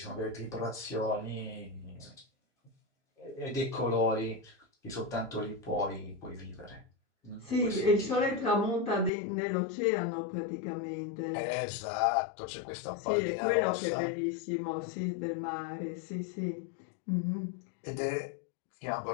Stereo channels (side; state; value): right; drops out; at 9.1 s